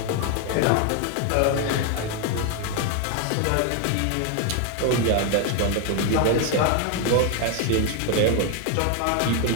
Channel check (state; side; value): different; both; correlation 0.01